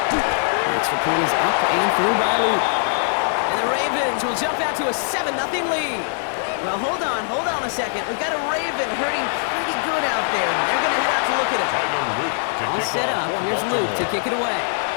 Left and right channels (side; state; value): right; silent; digital silence